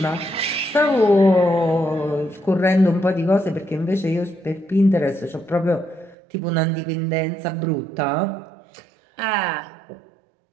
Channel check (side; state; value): left; drops out; at 6.2 s